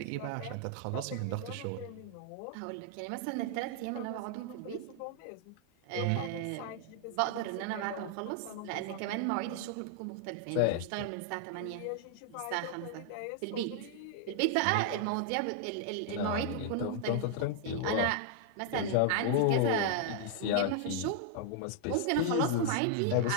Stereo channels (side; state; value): both; different; correlation -0.01